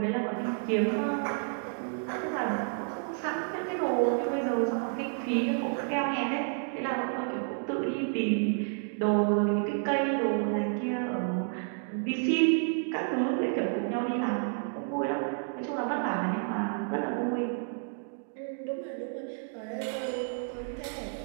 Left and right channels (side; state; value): left; silent; 57 dB below the other